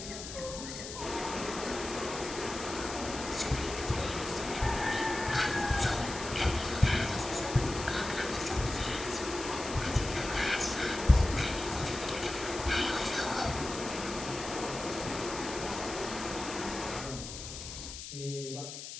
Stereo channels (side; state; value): left; noise; hiss, 9 dB below the sound